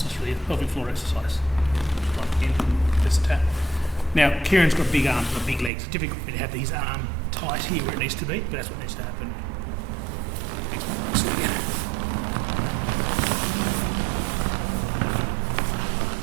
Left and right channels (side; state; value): left; drops out; at 5.7 s